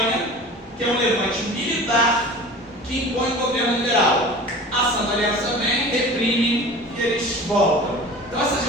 que é um levante militar que impõe o governo liberal. A Santa Aliança vem, reprime e eles voltam. Então essas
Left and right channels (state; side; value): normal; both; correlation 0.39